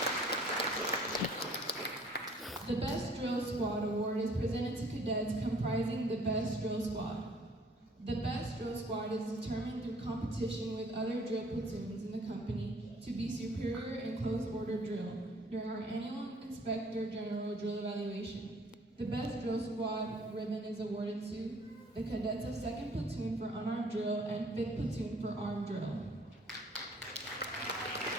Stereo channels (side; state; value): both; normal; correlation 0.56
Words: The Best Drill Squad Award is presented to cadets comprising the Best Drill Squad. The Best Drill Squad is determined through competition with other drill platoons in the company to be superior in close order drill during our annual Inspector General Drill Evaluation. The Best Drill Squad ribbon is awarded to the cadets of 2nd Platoon for Unarmed Drill and 5th Platoon for Armed Drill.